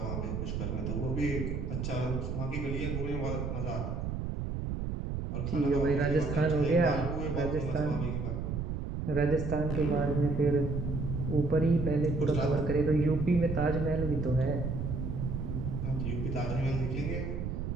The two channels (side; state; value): right; noise; rumble, 3 dB below the sound